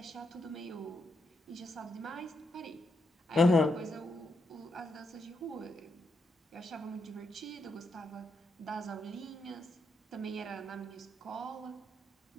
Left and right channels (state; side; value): normal; both; correlation 0.81